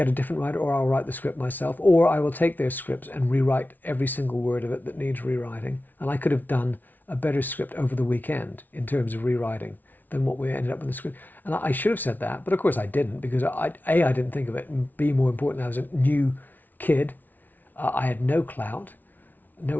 a different writer, or I'll write the script myself, or I will take their scripts and rewrite every single word of it that needs rewriting. And I could have done a better script over the weekend in terms of rewriting than what we ended up with the script. And I should have said that, but of course I didn't, because I didn't think of it, and B, more important, I was a new kid. I had no clout, no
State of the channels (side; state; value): right; late; 0.083 ms